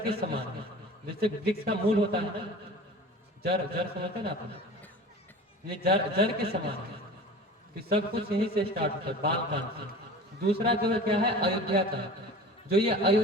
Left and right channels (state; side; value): normal; both; correlation 0.38